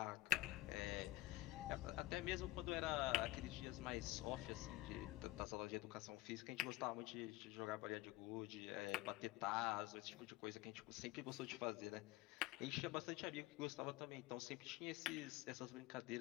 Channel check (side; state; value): right; quieter; 18.2 dB